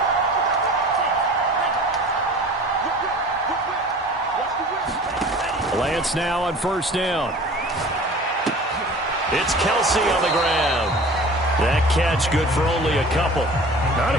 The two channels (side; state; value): both; normal; correlation 0.42